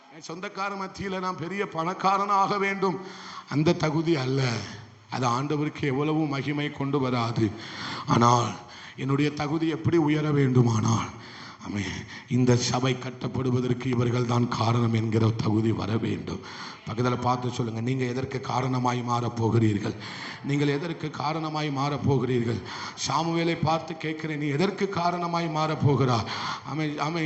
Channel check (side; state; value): both; identical; correlation 1.00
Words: என் சொந்தக்கார மத்தியில் நான் பெரிய பணக்காரனாக வேண்டும், அந்த தகுதி அல்ல. அது ஆண்டவருக்கு எவ்வளவு மகிமை கொண்டு வராது. ஆனால் என்னுடைய தகுதி எப்படி உயர வேண்டுமானால், இந்த சபை கட்டப்படுவதற்கு இவர்கள் தான் காரணம் என்கிற தகுதி வர வேண்டும். பக்கத்தில் பார்த்து சொல்லுங்க, நீங்க எதற்கு காரணமாய் மாறப்போகிறீர்கள்? நீங்கள் எதற்கு காரணமாய் மாறப்போகிறீர்கள்? சாமுவேலை பார்த்து கேட்கிறேன், நீ எதற்கு காரணமாய் மாறப்போகிறா?